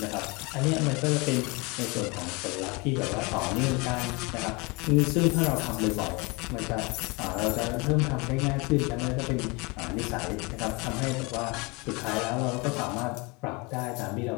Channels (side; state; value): right; quieter; 27.4 dB